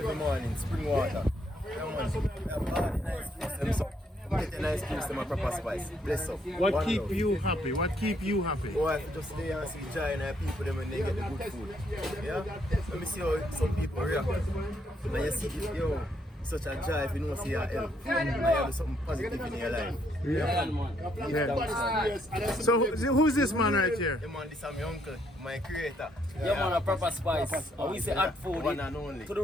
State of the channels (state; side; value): normal; both; correlation 0.72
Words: morning, spring water. We have all the nice juice, them get a nice juice, them a proper spice. Bless up. What keep you happy? What keep you happy? Oh, I just lay and see joy in our people them when they get the good food. Yeah? Let me see how some people react. And you see, yo, such a joy if you know see your help. And you have something positive in your life. Yeah. Yeah. So who's this man right here? Yeah, man, this is my uncle, my creator. Yeah, man, a proper spice. And we say add food one and only. to the